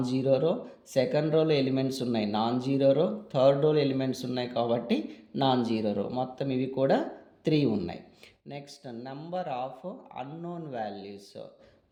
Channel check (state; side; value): identical; both; correlation 1.00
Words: జీరో రో, సెకండ్ రోలో ఎలిమెంట్స్ ఉన్నాయి నాన్ జీరో రో, థర్డ్ రోలో ఎలిమెంట్స్ ఉన్నాయి కాబట్టి నాన్ జీరో రో. మొత్తం ఇవి కూడా 3 ఉన్నాయి. Next number of unknown values.